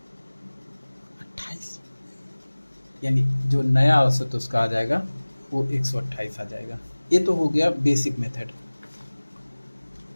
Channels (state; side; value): inverted; both; correlation -1.00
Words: यानी जो नया औसत उसका आ जाएगा वो 128 आ जाएगा। ये तो हो गया बेसिक मेथड।